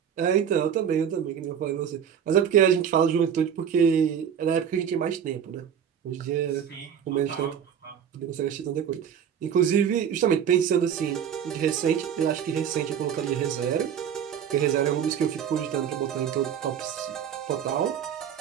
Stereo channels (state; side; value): quieter; left; 8.4 dB